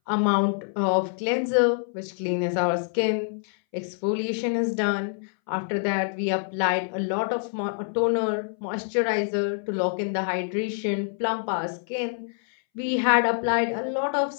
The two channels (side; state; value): right; silent; 61 dB below the other